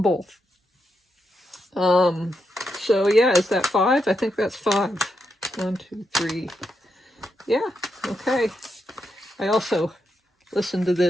both. So yeah, is that 5? I think that's 5. 1, 2, 3. Yeah, okay. I also listened to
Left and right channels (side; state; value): both; normal; correlation 0.83